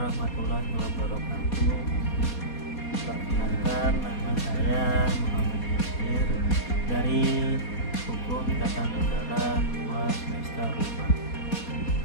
wabarakatuh. Perkenalkan, nama saya Muhammad Yasir dari Hukum Tata Negara 2 semester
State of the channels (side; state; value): right; late; 4.2 ms